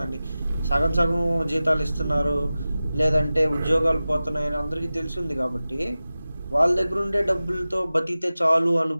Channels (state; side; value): inverted; both; correlation -0.96